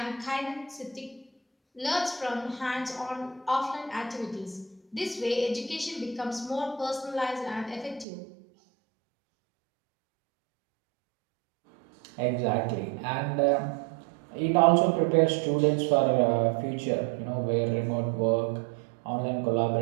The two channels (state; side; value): drops out; left; at 8.1 s